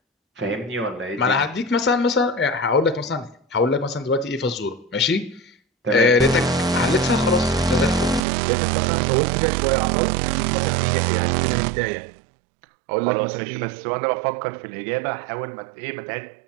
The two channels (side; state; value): left; drops out; at 8.2 s